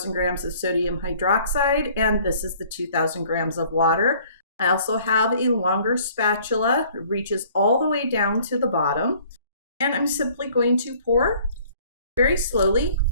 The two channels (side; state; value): both; inverted; correlation -0.55